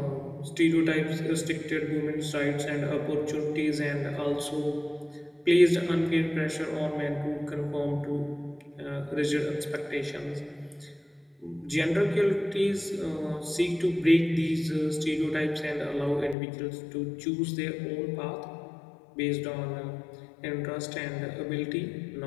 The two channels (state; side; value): drops out; right; at 16.4 s